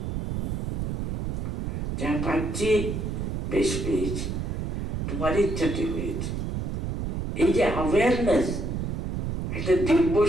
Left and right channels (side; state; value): right; noise; rumble, 2 dB below the sound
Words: যা পাচ্ছি বেশ পেয়েছি, তোমার ইচ্ছাটি হয়েছে। এই যে অ্যাওয়ারনেস, একটা দিব্য